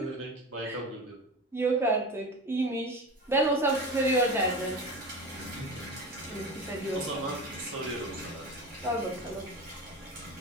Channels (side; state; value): both; normal; correlation 0.29